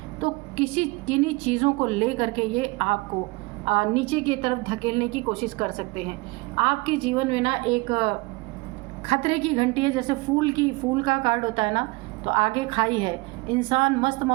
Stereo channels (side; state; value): left; quieter; 24.3 dB